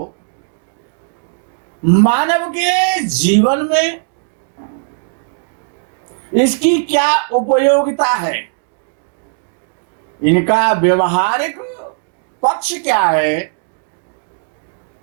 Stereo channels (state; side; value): silent; left; digital silence